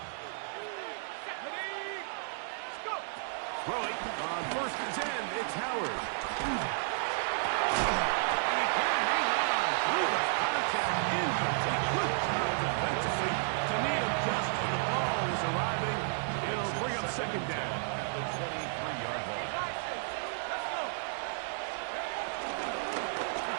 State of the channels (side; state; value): left; silent; digital silence